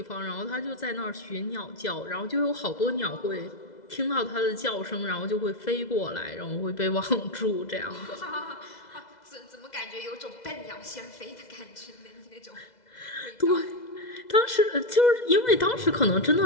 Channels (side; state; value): right; late; 2.0 ms